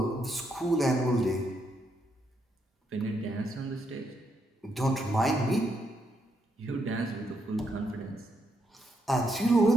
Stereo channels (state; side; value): normal; both; correlation 0.78